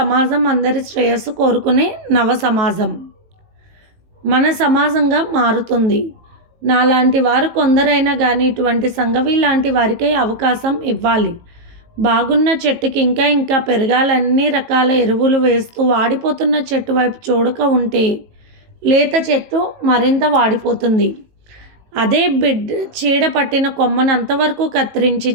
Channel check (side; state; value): left; late; 18 ms